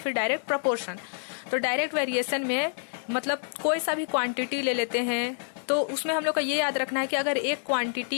डायरेक्ट प्रपोर्शन। तो डायरेक्ट वेरिएशन में मतलब कोई सा भी क्वांटिटी ले लेते हैं, तो उसमें हम लोग का ये याद रखना है कि अगर एक क्वांटिटी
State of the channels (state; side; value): silent; right; digital silence